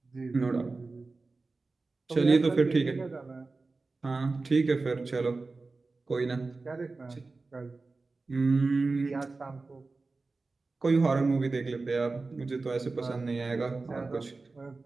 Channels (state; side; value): quieter; left; 3.7 dB